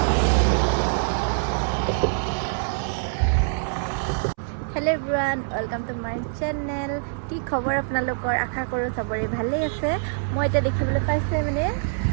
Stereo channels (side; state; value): left; silent; 62 dB below the other